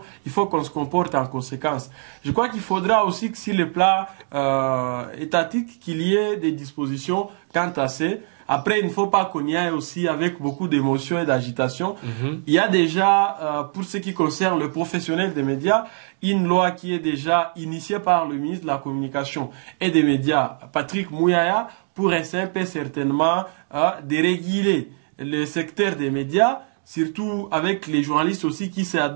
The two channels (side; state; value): left; silent; 57 dB below the other